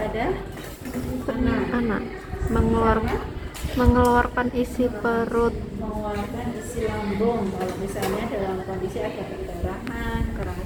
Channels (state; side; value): identical; both; correlation 1.00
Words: anak mengeluarkan isi perut, mengeluarkan isi lambung. Kalau misalnya dalam kondisi ada perdarahan,